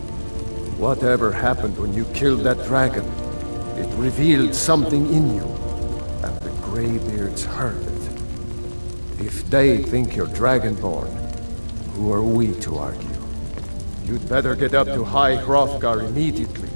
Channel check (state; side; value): inverted; both; correlation -1.00